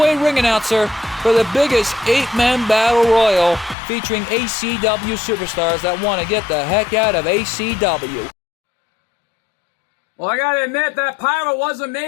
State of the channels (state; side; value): drops out; right; at 3.8 s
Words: ring announcer, for the biggest 8-man battle royal featuring ACW superstars that want to get the heck out of ACW. Well, I gotta admit, that pyro was